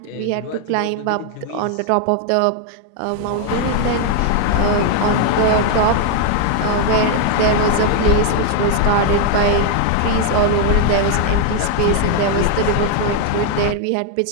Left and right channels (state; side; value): different; both; correlation 0.00